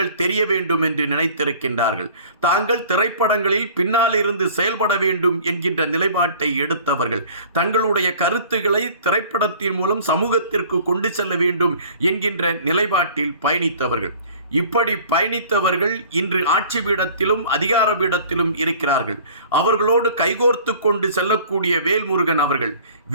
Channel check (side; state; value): both; inverted; correlation -0.49